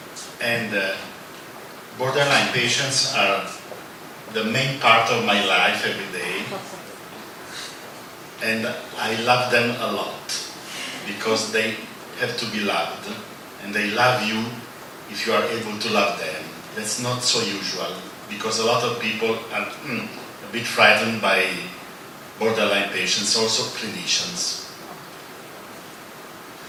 and borderline patients are the main part of my life every day, and I love them a lot because they have to be loved, and they love you if you are able to love them. That's not so usual because a lot of people are a bit frightened by borderline patients, also clinicians.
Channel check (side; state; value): both; identical; correlation 1.00